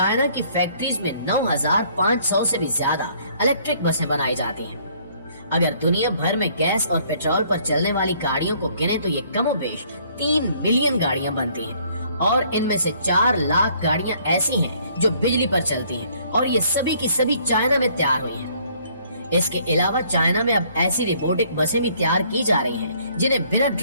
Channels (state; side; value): inverted; both; correlation -0.62